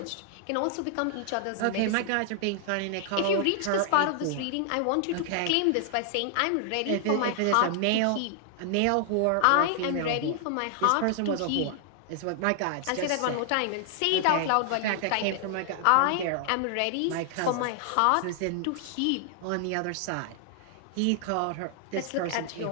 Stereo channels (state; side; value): different; both; correlation 0.00